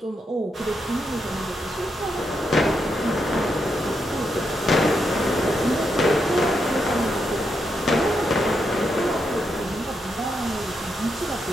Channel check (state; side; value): normal; both; correlation 0.82